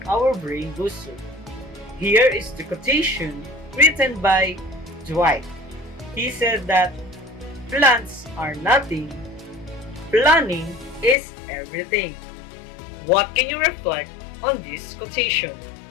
our brain booster. Here is the quotation written by Dwight. He said that plans are nothing, planning is everything. What can you reflect on this quotation?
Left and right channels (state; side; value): drops out; right; at 11.2 s